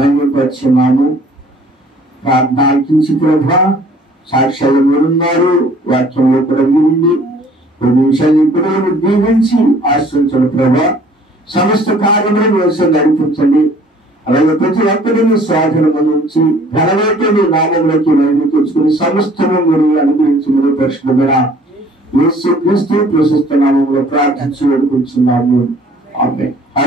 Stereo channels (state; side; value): normal; both; correlation 0.55